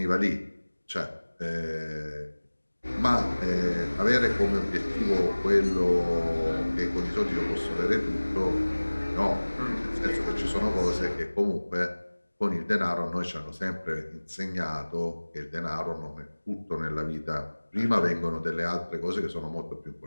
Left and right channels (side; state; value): both; inverted; correlation -1.00